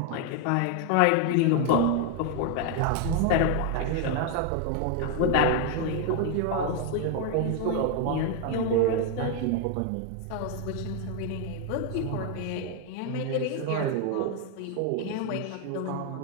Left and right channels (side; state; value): both; different; correlation 0.00